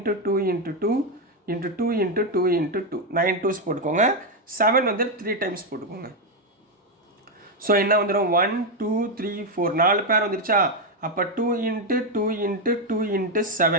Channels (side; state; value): both; normal; correlation 0.04